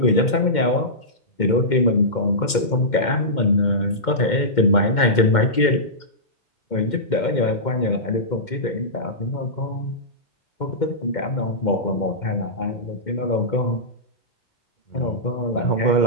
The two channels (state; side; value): late; right; 2.1 ms